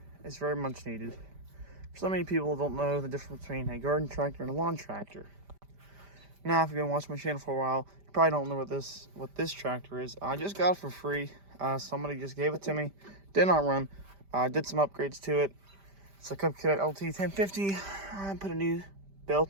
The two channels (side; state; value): left; late; 5.1 ms